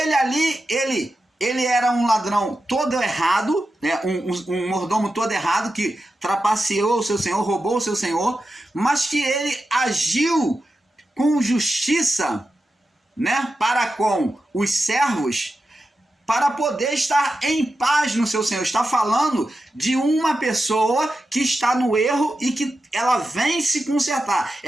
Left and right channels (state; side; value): normal; both; correlation 0.90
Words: era um ladrão todo errado, né? um mordomo todo errado, que trapaceou o seu senhor, roubou o seu senhor, mas que ele agiu com justiça, né? Para com os servos, para poder estar em paz no seu Senhor. Está falando de uma pessoa que está no erro e que ela vem se consertar.